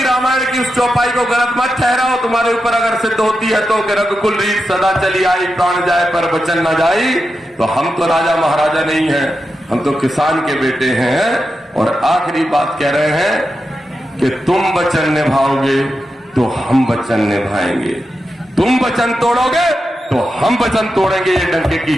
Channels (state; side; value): normal; both; correlation 0.89